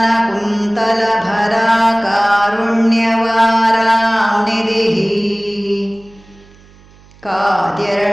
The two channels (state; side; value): noise; right; hum, 26 dB below the sound